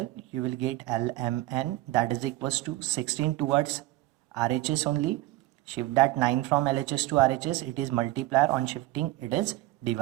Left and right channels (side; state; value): left; quieter; 17.4 dB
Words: you will get LMN, that is equals to 16 towards RHS only. Shift that 9 from LHS to RHS, it is multiplier. On shifting, it is